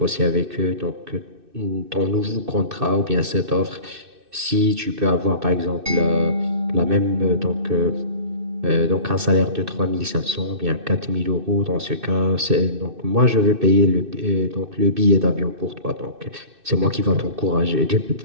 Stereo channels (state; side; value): late; left; 2.6 ms